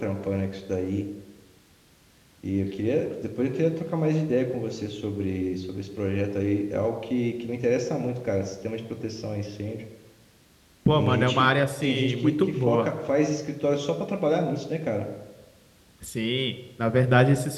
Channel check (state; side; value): identical; both; correlation 1.00